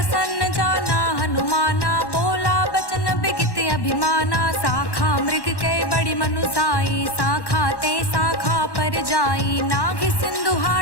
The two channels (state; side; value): late; right; 1.1 ms